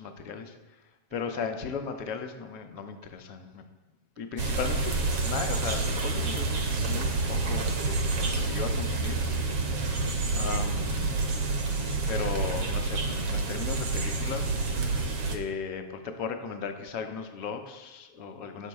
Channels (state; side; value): late; left; 7.3 ms